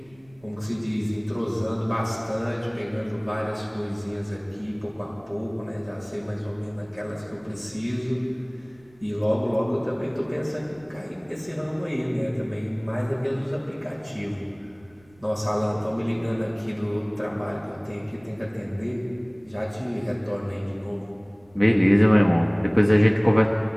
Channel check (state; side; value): noise; right; rumble, 29 dB below the sound